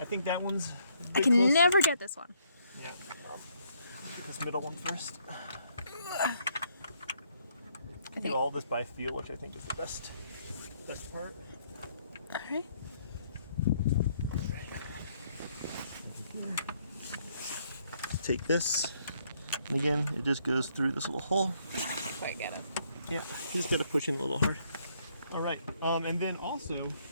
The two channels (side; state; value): both; inverted; correlation -0.70